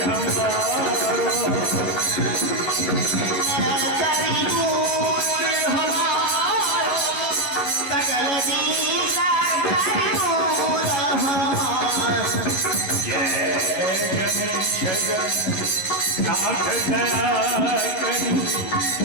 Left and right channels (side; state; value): right; late; 11 ms